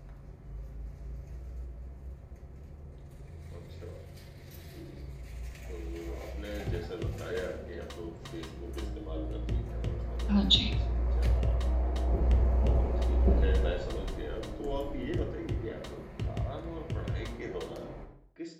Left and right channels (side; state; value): both; identical; correlation 1.00